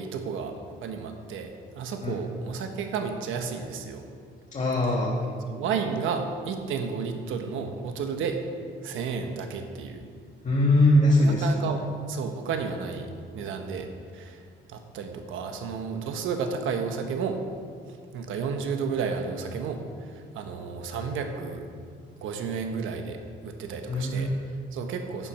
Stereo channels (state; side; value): normal; both; correlation 0.55